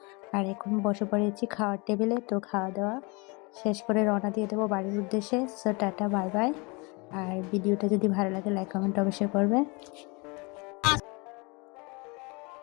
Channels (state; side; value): quieter; right; 28.8 dB